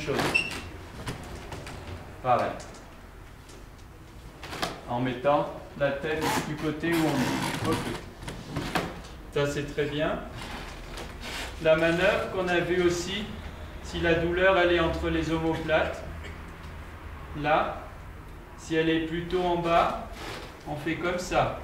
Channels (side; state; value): both; identical; correlation 1.00